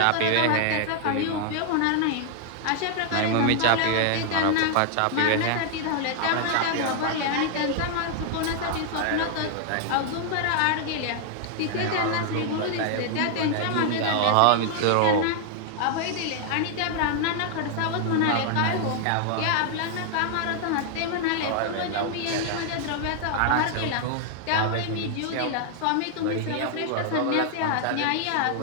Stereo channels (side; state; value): both; different; correlation 0.00